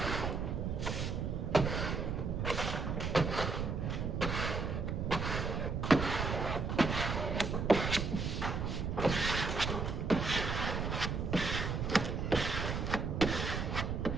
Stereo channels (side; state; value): right; noise; rumble, 1 dB below the sound